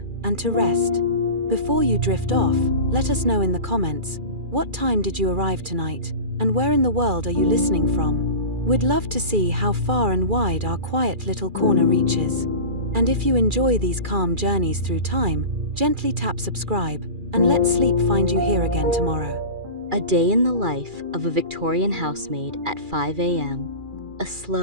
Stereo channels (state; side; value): late; left; 2.4 ms